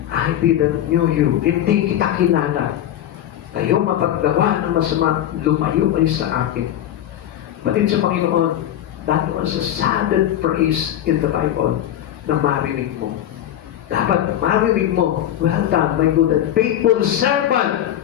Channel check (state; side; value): quieter; right; 11.5 dB